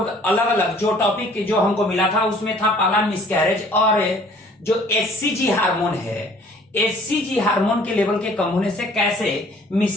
अलग अलग जो टॉपिक जो हमको मिला था उसमें था पहला मिसकैरेज, और जो एचसीजी हार्मोन है, एचसीजी हार्मोन के लेवल के कम होने से कैसे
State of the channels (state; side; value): normal; both; correlation 0.55